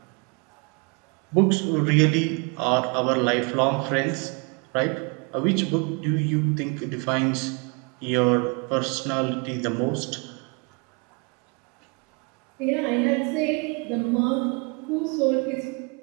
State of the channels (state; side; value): quieter; left; 32.8 dB